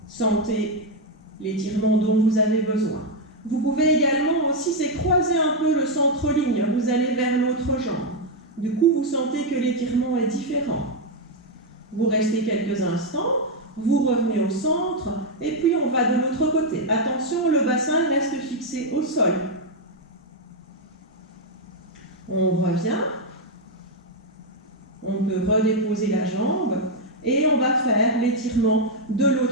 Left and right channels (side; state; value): both; normal; correlation 0.01